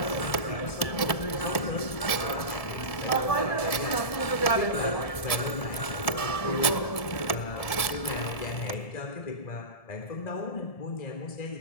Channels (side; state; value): right; late; 1.7 ms